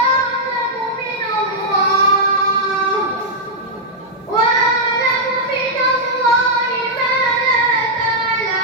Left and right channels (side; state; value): both; normal; correlation -0.07